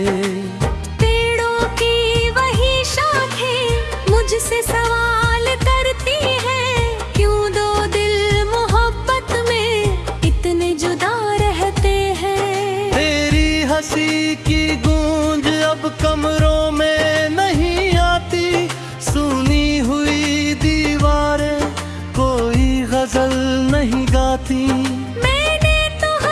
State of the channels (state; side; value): identical; both; correlation 1.00